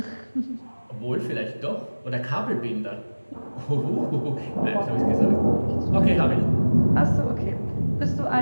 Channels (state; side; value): inverted; both; correlation -1.00